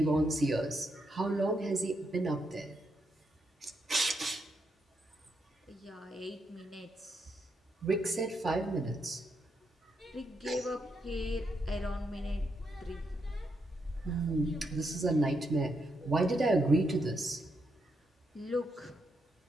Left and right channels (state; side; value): normal; both; correlation 0.80